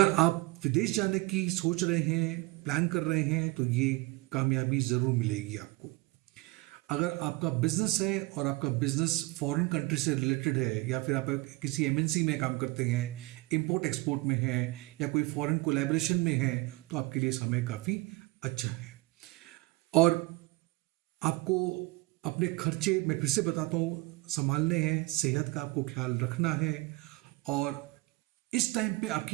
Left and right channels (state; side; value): quieter; left; 22.3 dB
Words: आप विदेश जाने की सोच रहे हैं, प्लान कर रहे हैं, तो ये कामयाबी जरूर मिलेगी आपको। अगर आपका बिजनेस है और आपका बिजनेस फॉरेन कंट्री से रिलेटेड है, या फिर आप किसी एमएनसी में काम करते हैं, इंपोर्ट एक्सपोर्ट में है, या कोई फॉरेन कोलैबोरेशन में है, तो आपके लिए समय काफ़ी अच्छा है। और आपको अपने खर्चे, मैं फिर से बताता हूँ, संभालने हैं, सेहत का आपको ख्याल रखना है। और इस टाइम पे